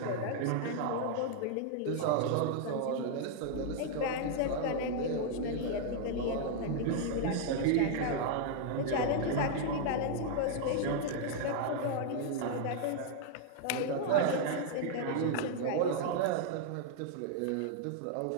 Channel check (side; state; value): both; different; correlation 0.00